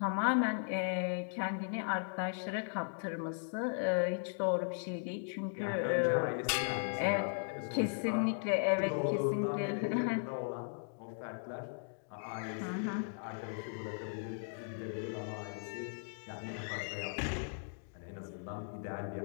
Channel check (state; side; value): silent; right; digital silence